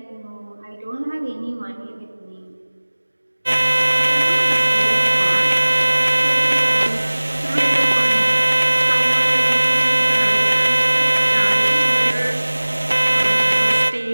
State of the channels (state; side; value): inverted; both; correlation -1.00